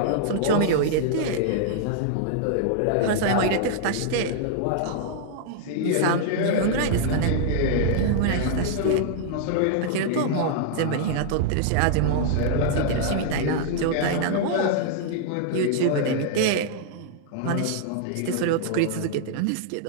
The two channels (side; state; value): both; different; correlation -0.01